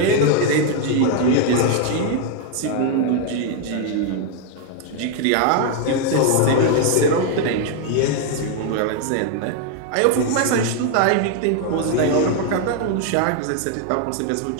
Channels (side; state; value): both; different; correlation 0.01